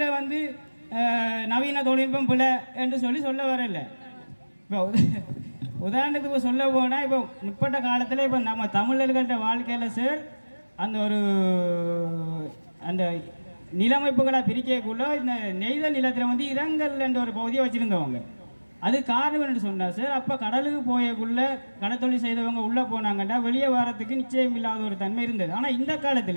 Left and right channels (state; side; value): inverted; both; correlation -1.00